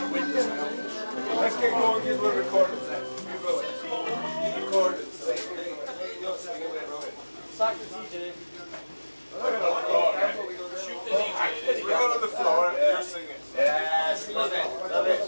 Let's get going. Get a little recorded. Recorded. Sack the DJ. Shoot the DJ. We're on the floor. You're singing. Yes, love it. Love it.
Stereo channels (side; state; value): both; inverted; correlation -1.00